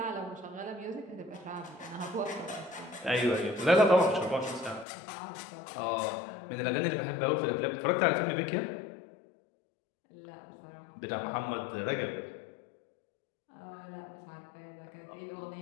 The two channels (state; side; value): drops out; right; at 4.9 s